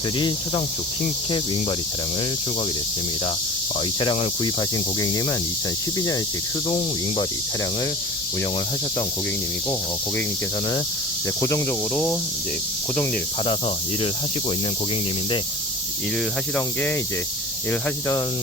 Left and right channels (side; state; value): both; normal; correlation 0.37